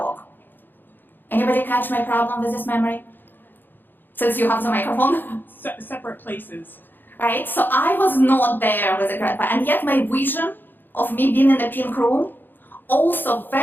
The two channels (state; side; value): late; right; 0.093 ms